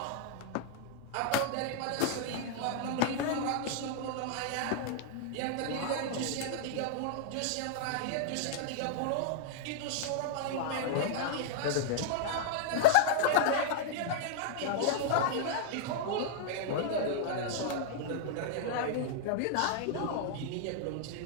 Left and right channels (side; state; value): both; different; correlation -0.01